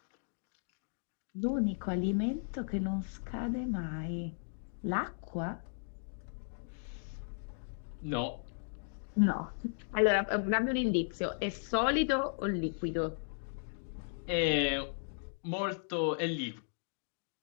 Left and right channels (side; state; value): right; silent; digital silence